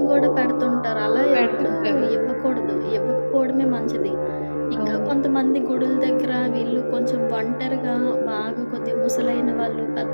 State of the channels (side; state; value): both; inverted; correlation -1.00